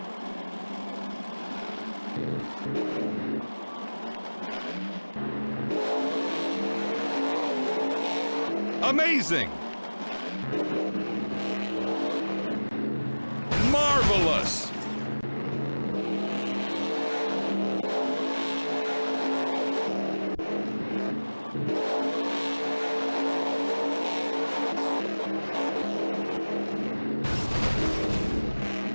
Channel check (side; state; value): both; inverted; correlation -1.00